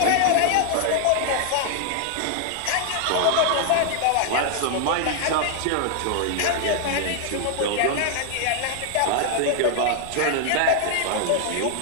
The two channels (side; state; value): both; different; correlation 0.00